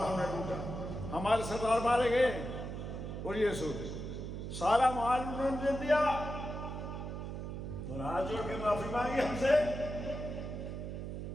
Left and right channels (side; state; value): right; noise; hum, 6 dB below the sound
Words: ہم نے لوٹا، ہمارے سردار مارے گئے اور یہ سوچ سارا مال انہوں نے دے دیا اور ہاتھ جوڑ کے معافی مانگی ہم سے۔